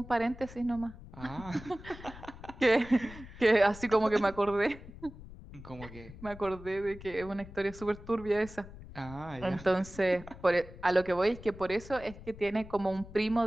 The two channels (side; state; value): left; noise; rumble, 16 dB below the sound